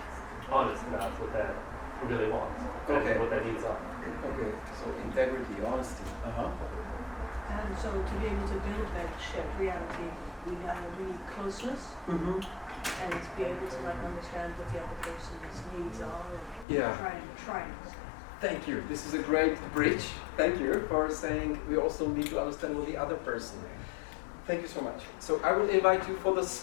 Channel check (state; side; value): drops out; right; at 16.7 s